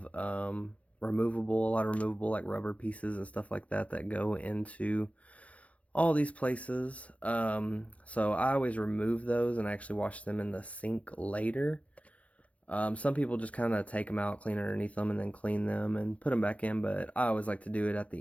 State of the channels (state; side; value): late; right; 0.065 ms